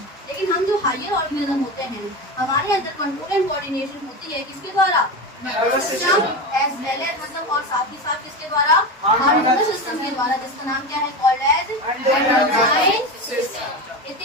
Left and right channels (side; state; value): both; normal; correlation 0.22